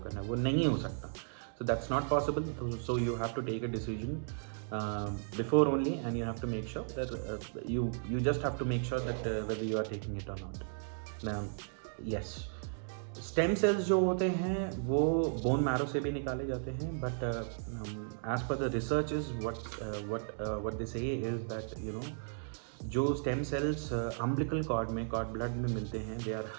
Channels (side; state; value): left; silent; digital silence